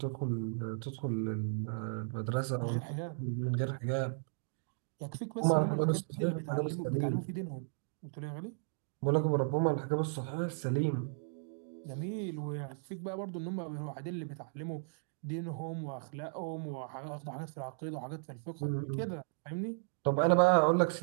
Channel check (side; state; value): left; silent; digital silence